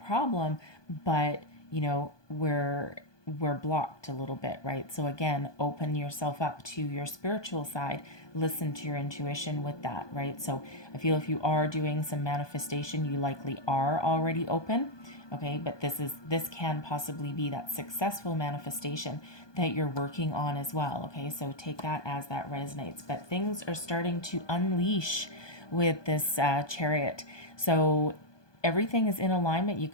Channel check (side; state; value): right; late; 1.2 ms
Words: problem, but, we're blocked a little bit, right? So again, open yourself up to your spiritual side, listen to your intuition with that, right? So I feel if you are doing some manifestation, you likely are already open, okay? But this can possibly be that successful manifestation that you're working on as well, okay? So take that as that resonates. But things are starting to unleash with this Chariot. So everything is in alignment. You